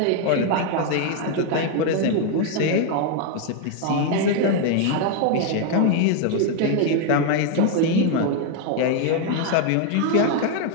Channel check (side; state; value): both; different; correlation 0.01